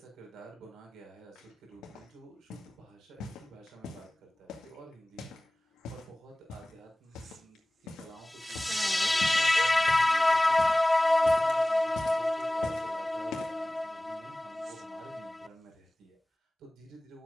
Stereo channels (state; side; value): normal; both; correlation 0.98